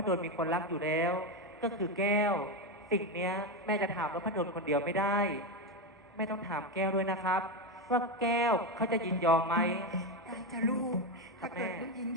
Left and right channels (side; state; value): both; normal; correlation 0.12